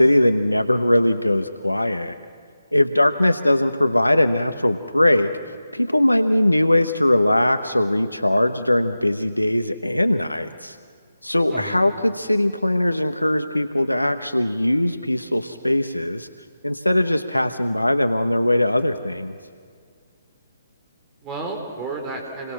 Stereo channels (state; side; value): inverted; both; correlation -0.95